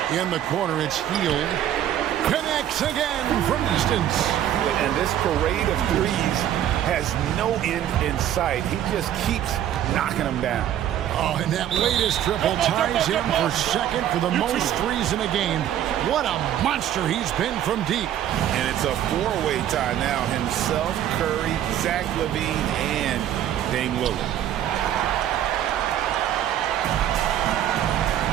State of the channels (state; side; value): quieter; left; 11.1 dB